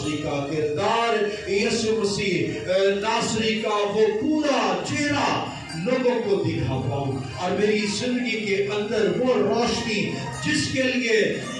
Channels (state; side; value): identical; both; correlation 1.00